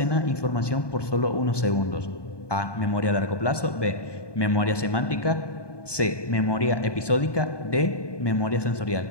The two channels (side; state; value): right; late; 1.2 ms